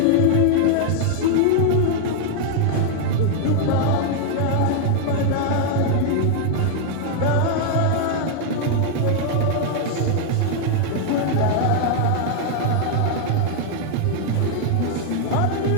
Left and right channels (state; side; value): different; both; correlation 0.00